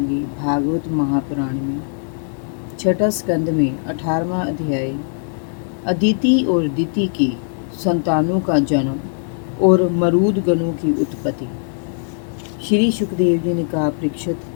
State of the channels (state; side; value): silent; right; digital silence